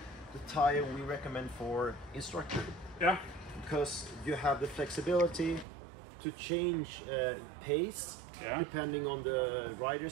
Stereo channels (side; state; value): left; drops out; at 5.7 s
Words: tire we recommend for instructor. Yeah. Because you have the flexibility to change pace depending on the